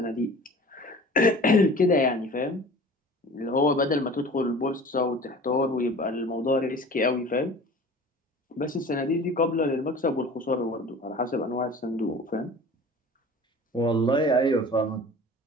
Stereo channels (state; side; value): normal; both; correlation 0.42